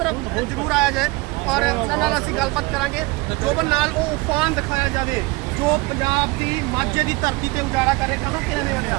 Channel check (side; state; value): left; quieter; 24.4 dB